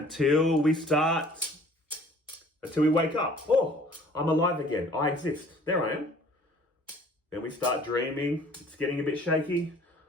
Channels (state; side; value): normal; both; correlation 0.54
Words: we wake up. Oh, I'm alive again. I exist. There I am. Then we start dreaming. It's getting a bit shaky.